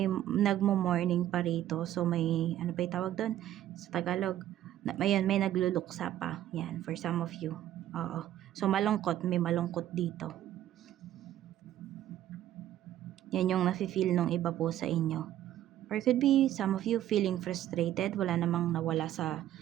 nagmo-mourning pa rito. So, may, ano pa yung tawag doon? Sa Tagalog, may nagluluksa pa. Yan, for some of you. Oo. So, malungkot. May malungkot dito. Yan yung nafe-feel nung iba po sa inyo. Or could be some of you feeling frustrated. Wala namang nawala sa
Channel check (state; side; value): quieter; left; 12.5 dB